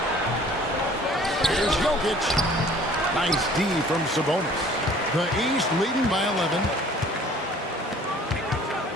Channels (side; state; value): both; normal; correlation 0.51